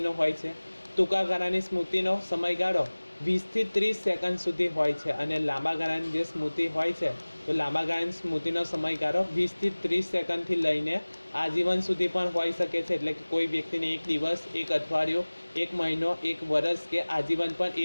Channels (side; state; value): both; inverted; correlation -1.00